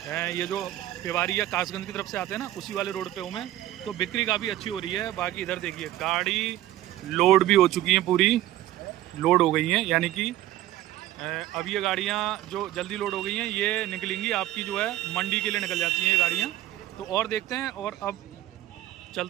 ये जो पेवारी या कासगंज की तरफ से आते हैं ना, उसी वाले रोड पे हूँ मैं। तो बिक्री काफ़ी अच्छी हो रही है। बाकी इधर देखिए गाड़ी लोड भी हो चुकी हैं, पूरी लोड हो गई हैं। यानी कि अब ये गाड़ियाँ जो जल्दी लोड हो गई हैं ये निकलेंगी आपकी जो है मंडी के लिए निकल जाती हैं ये गाड़ियाँ। तो और देखते हैं और अब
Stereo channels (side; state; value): left; quieter; 14.3 dB